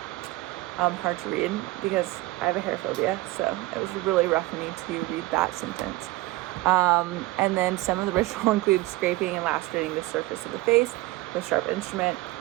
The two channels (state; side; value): quieter; left; 19.1 dB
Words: hard to read because I have a hair phobia, so it was really rough for me to read that sentence. And then some of the ritual includes scraping and lacerating the surface of the face with a sharp instrument.